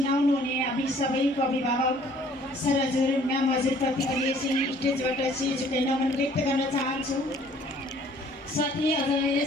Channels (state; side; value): normal; both; correlation 0.57